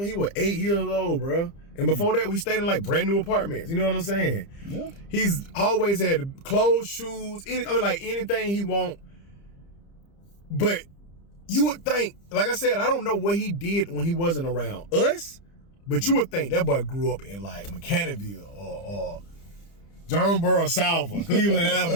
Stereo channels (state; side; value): late; right; 30 ms